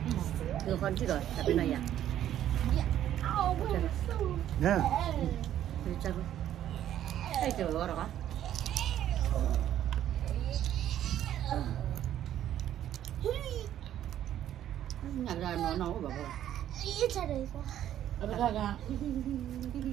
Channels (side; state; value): left; quieter; 11.5 dB